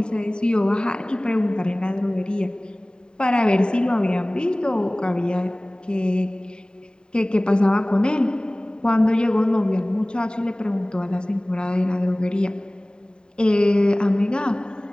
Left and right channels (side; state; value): right; late; 0.048 ms